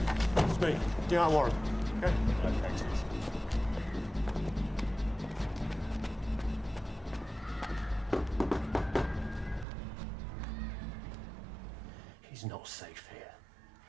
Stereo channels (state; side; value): drops out; left; at 9.7 s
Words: It's me, D.I. Warren. Okay? He's not safe here.